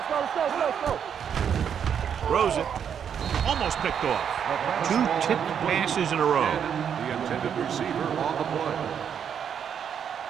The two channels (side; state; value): left; quieter; 8.0 dB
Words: go. Throws it. Almost picked off. 2 tipped passes in a row. The intended receiver on the play.